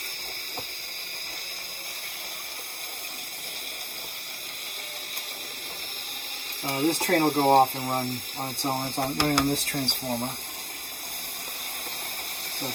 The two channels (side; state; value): both; identical; correlation 1.00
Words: This train will go off and run on its own. It's running on this transformer. So